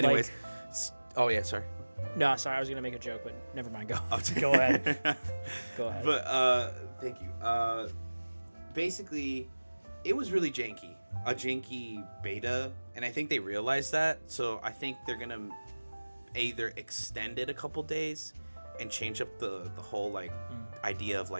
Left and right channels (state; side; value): inverted; both; correlation -1.00